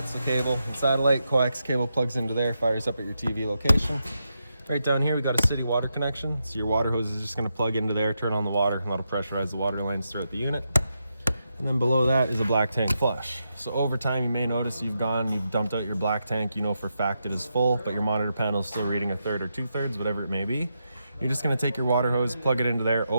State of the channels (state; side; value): inverted; both; correlation -0.85